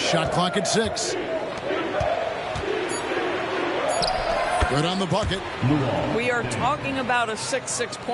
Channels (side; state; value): both; identical; correlation 1.00